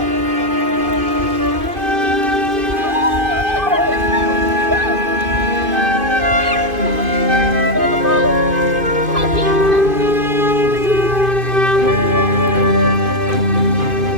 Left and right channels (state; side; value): late; left; 2.5 ms